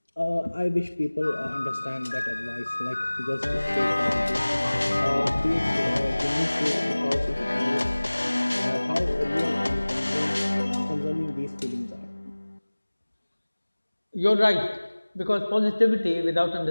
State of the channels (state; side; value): inverted; both; correlation -1.00